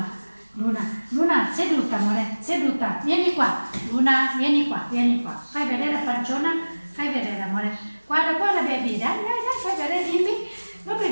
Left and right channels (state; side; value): inverted; both; correlation -1.00